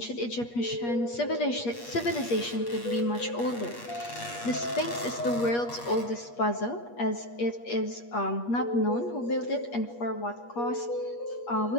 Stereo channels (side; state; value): right; late; 8.4 ms